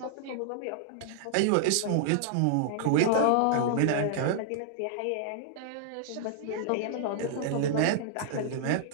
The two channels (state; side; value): different; both; correlation -0.01